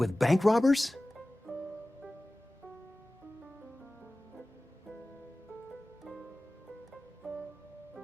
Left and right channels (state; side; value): normal; both; correlation 0.97